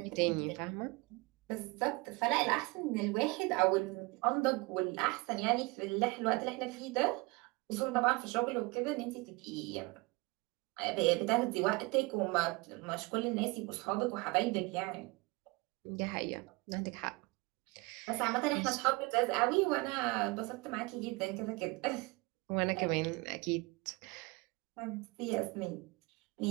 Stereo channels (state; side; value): quieter; left; 25.1 dB